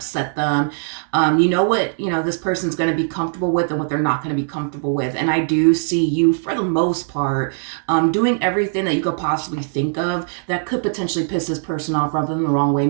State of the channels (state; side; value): silent; left; digital silence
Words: them. You know what this person's going to be comfortable with and what they're not going to be comfortable with. And I do see you, for the most part, doing everything that you could possibly think of that could potentially piss this person off, rub them the wrong way,